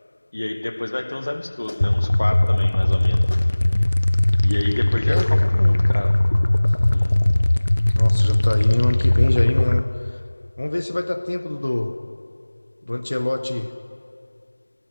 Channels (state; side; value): inverted; both; correlation -1.00